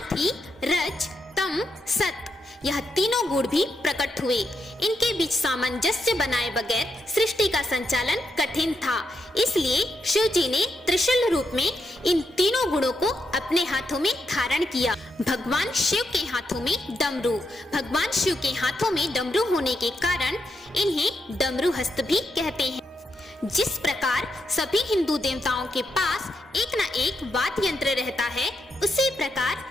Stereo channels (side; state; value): both; normal; correlation 0.82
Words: ही रज, तम, सत, यह तीनों गुण भी प्रकट हुए। इनके बीच सामंजस्य बनाए बगैर सृष्टि का संचालन कठिन था, इसलिए शिव जी ने त्रिशूल रूप में इन तीनों गुणों को अपने हाथों में धारण किया। भगवान शिव के हाथों में डमरू। भगवान शिव के हाथों में डमरू होने के कारण इन्हें डमरू हस्त भी कहते हैं। जिस प्रकार सभी हिंदू देवताओं के पास एक न एक वाद्य यंत्र रहता है, उसी प्रकार